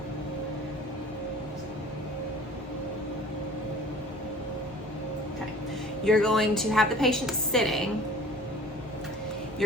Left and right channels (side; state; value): both; normal; correlation 0.48